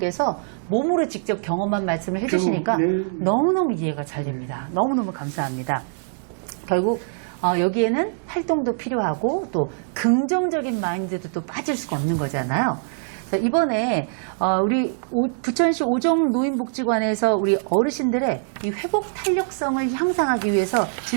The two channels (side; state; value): left; silent; digital silence